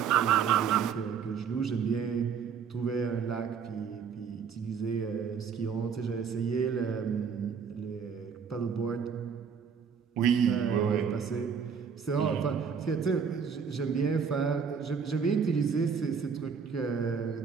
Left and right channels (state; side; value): quieter; left; 6.6 dB